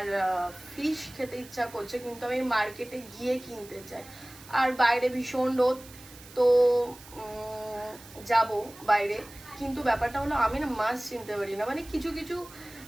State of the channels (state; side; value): noise; right; hiss, 19 dB below the sound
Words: ফিশ খেতে ইচ্ছা করছে, কিন্তু আমি মার্কেটে গিয়ে কিনতে চাই। আর বাইরে ভীষণ রোদ, তো যাব বাইরে। কিন্তু ব্যাপারটা হলো আমি না মাছ চিনতে পারি না, মানে কিছু কিছু